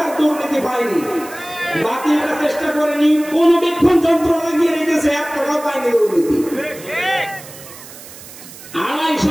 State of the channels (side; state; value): right; noise; hiss, 17 dB below the sound